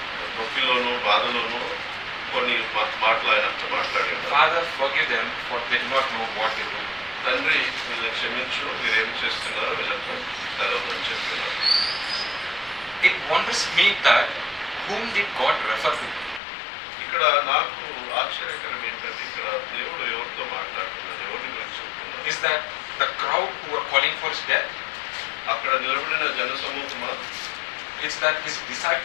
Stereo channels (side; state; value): right; drops out; at 16.4 s